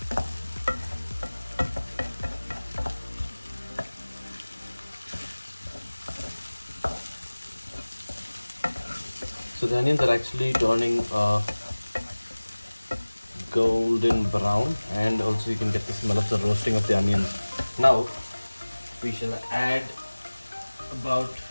the onions are actually turning golden brown, and also you can get the smell of the roasting of the onions. Now we shall add about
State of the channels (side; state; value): both; inverted; correlation -1.00